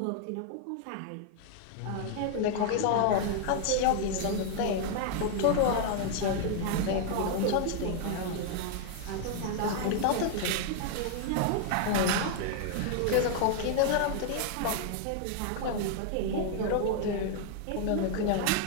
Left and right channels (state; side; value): different; both; correlation 0.00